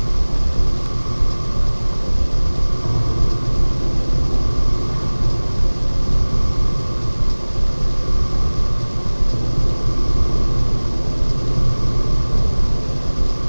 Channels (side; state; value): both; inverted; correlation -1.00